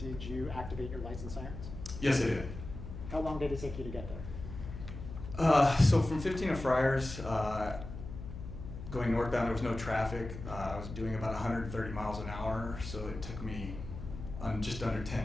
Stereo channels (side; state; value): left; noise; hum, 10 dB below the sound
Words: you activate your lights and sirens? Yes, I did. How long did it take you to get there? So from 15 to Friars, going northbound, there was no traffic. I was doing about 130 miles an hour, so it took me just under 10